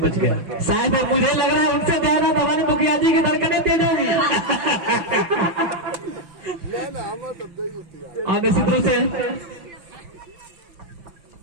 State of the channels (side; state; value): left; late; 5.9 ms